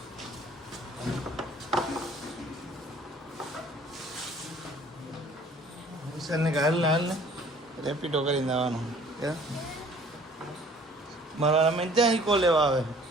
વિશાલને કે હાલ ને રેપિડો કરીને આવવાનું. મારા અમે ત્યાં ઈકો લેવા આવે.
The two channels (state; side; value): normal; both; correlation 0.54